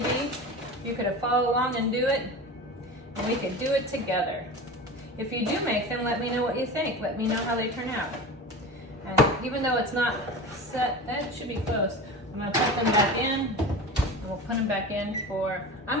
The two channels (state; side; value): normal; both; correlation 0.31